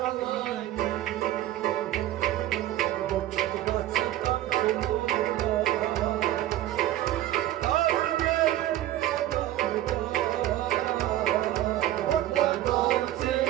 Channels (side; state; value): left; quieter; 13.8 dB